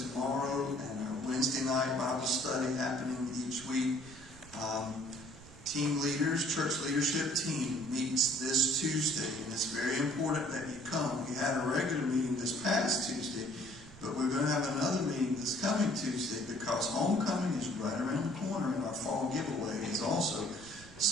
and our Wednesday night Bible study happening each week. Team leaders, church leadership team meets this Tuesday, and it's very important that you come. We had a regular meeting this past Tuesday, but we're going to have another meeting this coming Tuesday because homecoming is right around the corner, and our fall giveaway is also.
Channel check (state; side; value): noise; right; rumble, 19 dB below the sound